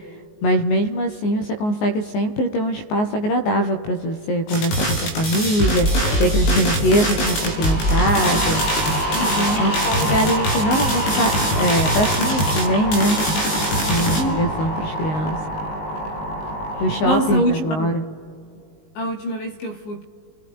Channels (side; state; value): right; late; 19 ms